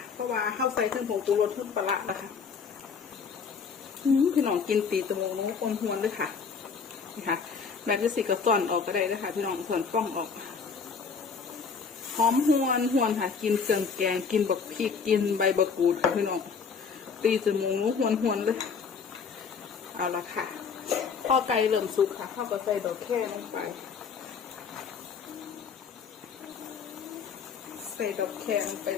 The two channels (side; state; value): right; quieter; 5.8 dB